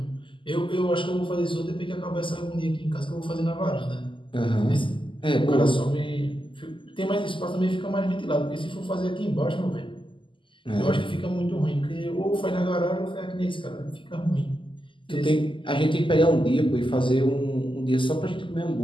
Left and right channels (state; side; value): late; right; 0.25 ms